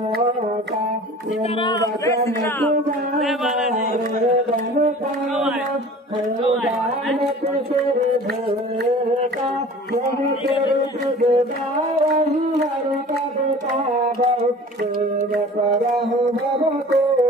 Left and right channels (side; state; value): both; normal; correlation 0.43